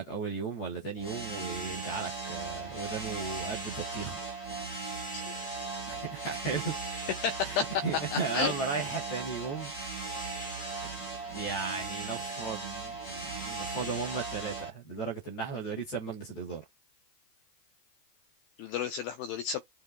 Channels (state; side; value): late; right; 14 ms